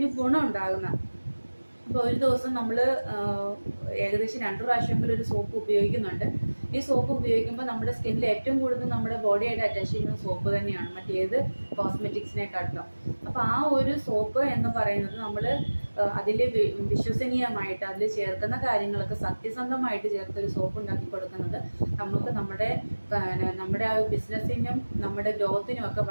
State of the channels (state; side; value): inverted; both; correlation -1.00